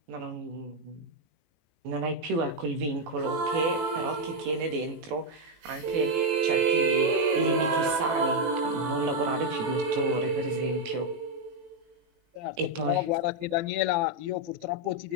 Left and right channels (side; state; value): left; late; 18 ms